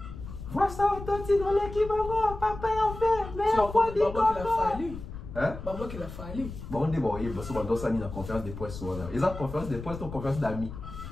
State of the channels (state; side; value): noise; left; rumble, 11 dB below the sound